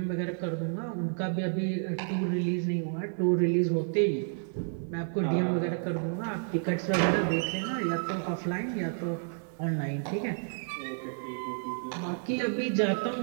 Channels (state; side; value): silent; left; 57 dB below the other